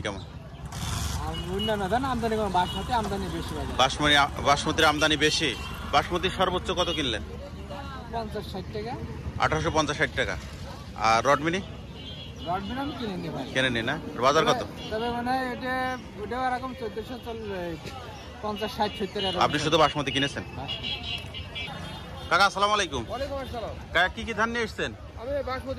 কেমন? অন্যান্য ধান আমদানি কম, বাসমতি আমদানি বেশি। বাসমতির আমদানি বেশি। বাসমতির সর্বোচ্চ কত কিনলেন? 50-60 টাকা। 1850-60 টাকা। আর রডমিনি? রডবিড়ি আমি কিনে নি ভাই। কেনেনি না? বাজার কত? তবে মানে ওটাও এরকম 1450-60-70 এরকম। আপনি শুধু বাসমতি কিনেছেন? কাকা আসসালামু আলাইকুম। ওয়ালাইকুম আসসালাম। কাকা কি কি ধান নিয়ে এসেছেন? আমি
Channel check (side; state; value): both; identical; correlation 1.00